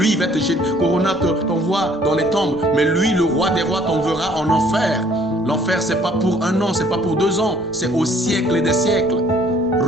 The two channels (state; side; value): normal; both; correlation 0.59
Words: il va te jeter. Corona t'envoie dans les tombes, mais lui, le roi des rois, t'enverra en enfer. L'enfer, c'est pas pour 1 an, c'est pas pour 2 ans, c'est au siècle et des siècles.